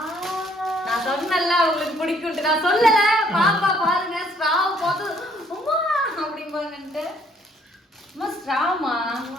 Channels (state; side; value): normal; both; correlation 0.64